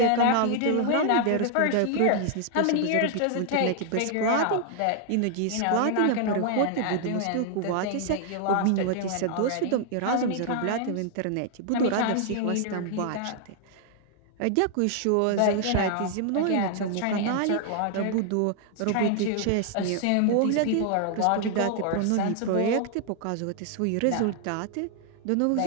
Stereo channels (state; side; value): different; both; correlation 0.00